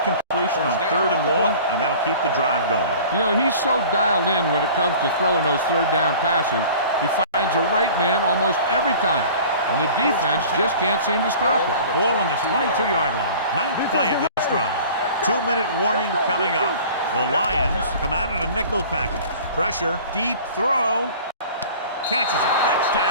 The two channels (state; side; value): inverted; both; correlation -0.44